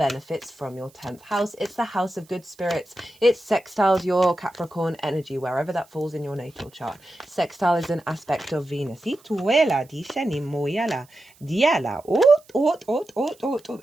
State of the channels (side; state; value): right; noise; hiss, 29 dB below the sound